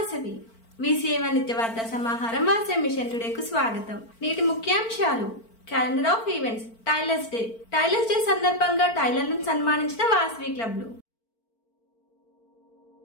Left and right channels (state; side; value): late; right; 4.4 ms